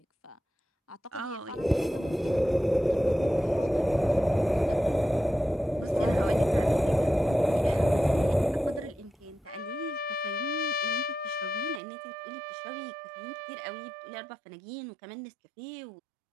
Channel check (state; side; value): drops out; left; at 11.8 s